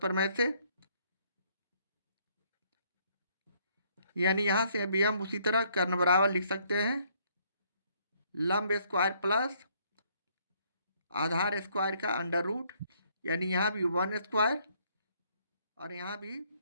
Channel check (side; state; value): both; inverted; correlation -0.67